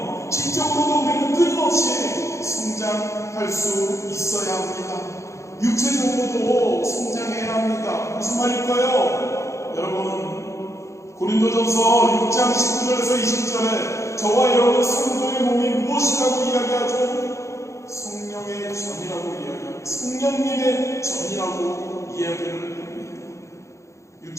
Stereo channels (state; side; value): late; right; 0.14 ms